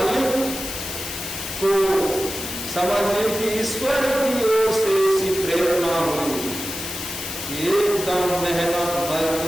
को समझने की ईश्वर की ओर से ऐसी प्रेरणा हुई, एकदम मेहनत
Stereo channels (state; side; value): noise; left; hiss, 7 dB below the sound